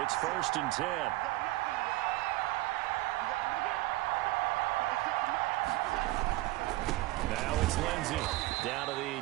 1st and 10. Now it's Lindsay down to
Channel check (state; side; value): quieter; left; 18.9 dB